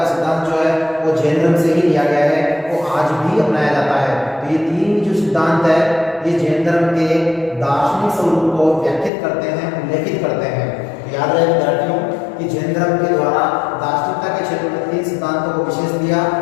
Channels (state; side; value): drops out; right; at 9.1 s